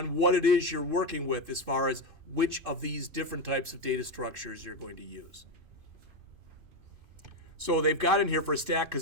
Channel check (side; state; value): left; late; 2.5 ms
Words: what it is you're working with as far as which of these different types of data structures you're going to use. So they've got in here for a stack,